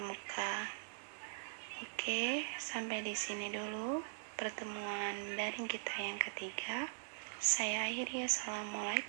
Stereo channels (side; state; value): left; silent; digital silence